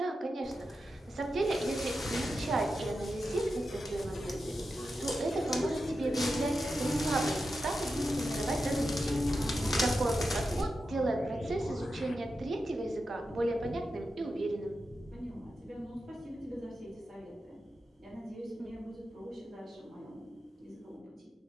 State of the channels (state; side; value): normal; both; correlation 0.90